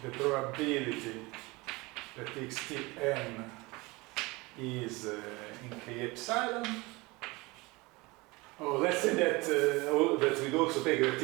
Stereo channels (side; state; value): left; quieter; 23.7 dB